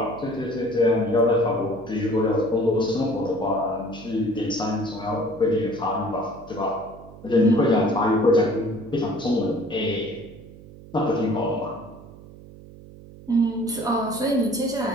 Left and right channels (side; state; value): right; noise; hum, 19 dB below the sound